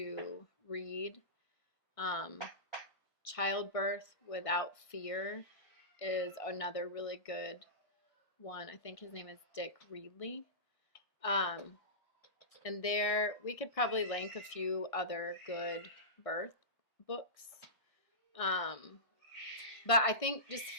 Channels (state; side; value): late; right; 1.6 ms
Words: read. Childbirth Without Fear is another really good one. I think his name is Dick Reedley. And there, we could probably link a few other good birth books. But I think just